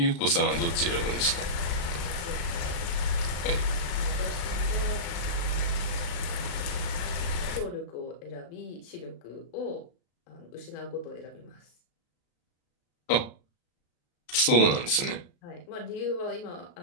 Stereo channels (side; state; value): right; late; 35 ms